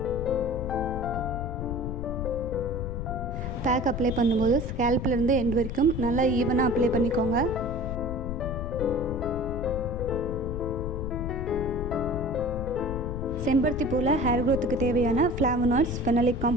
பேக் அப்ளை பண்ணும்போது ஸ்கேல்ப்லேருந்து எண்ட் வரைக்கும் நல்லா ஈவனாக அப்ளை பண்ணிக்கோங்க. செம்பருத்தி பூவில் ஹேர் க்ரோத்துக்கு தேவையான ஃப்ளாவனாய்ட்ஸ், ஃபெனலிக்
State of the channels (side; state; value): left; noise; rumble, 4 dB below the sound